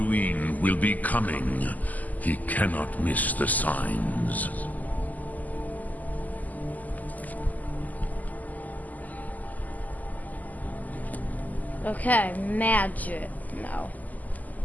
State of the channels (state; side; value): late; right; 0.080 ms